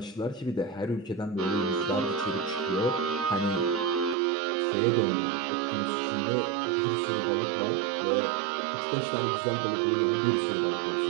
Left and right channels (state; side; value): drops out; left; at 4.2 s